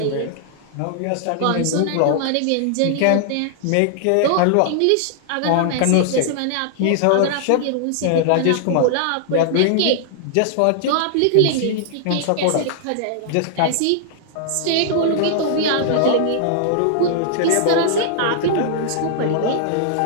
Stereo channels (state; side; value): different; both; correlation -0.01